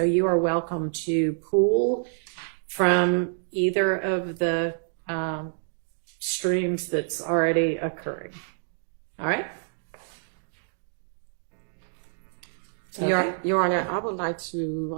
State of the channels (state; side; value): silent; left; digital silence